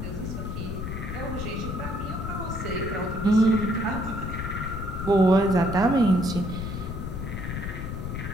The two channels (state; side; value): noise; left; rumble, 5 dB below the sound